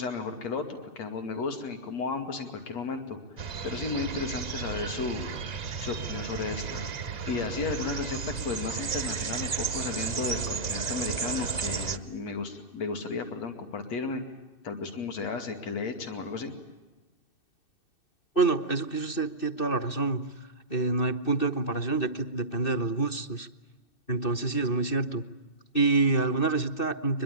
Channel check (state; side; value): late; right; 2.6 ms